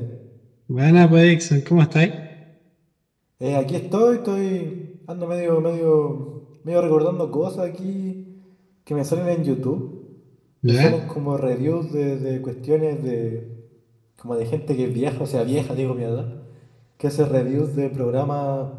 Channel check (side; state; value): both; identical; correlation 1.00